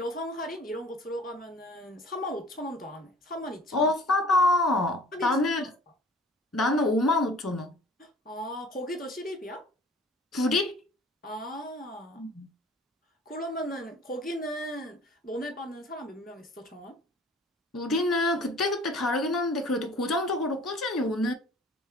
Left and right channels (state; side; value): normal; both; correlation 0.50